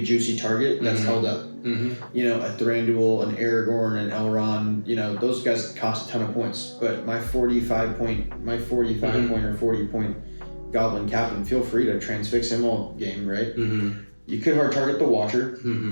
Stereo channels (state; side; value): inverted; both; correlation -1.00